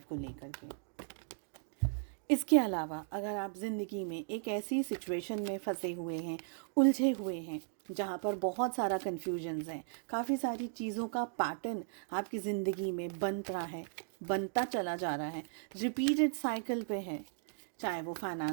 को लेकर के। इसके अलावा अगर आप ज़िंदगी में एक ऐसी सिचुएशन में फंसे हुए हैं, उलझे हुए हैं, जहाँ पर बहुत सारा कन्फ्यूजन्स है, काफ़ी सारी चीज़ों का पैटर्न आपकी ज़िंदगी में बन रहा है, बनता चला जा रहा है, रिपीटेड साइकिल पे है, चाहे वो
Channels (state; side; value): silent; left; digital silence